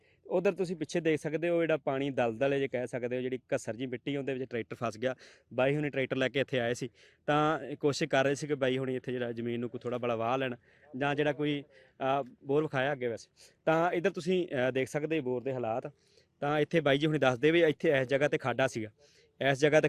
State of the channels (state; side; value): identical; both; correlation 1.00